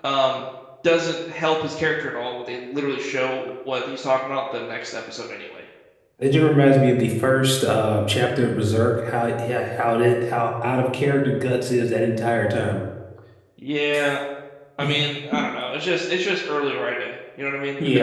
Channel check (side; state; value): both; identical; correlation 1.00